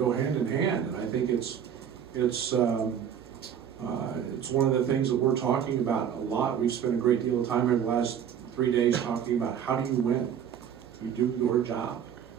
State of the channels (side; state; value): left; quieter; 8.7 dB